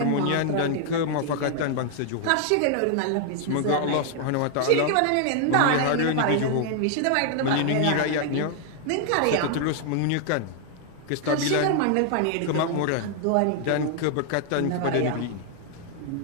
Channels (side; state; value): both; different; correlation 0.00